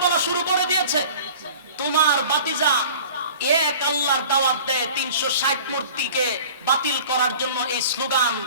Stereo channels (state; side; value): inverted; both; correlation -0.43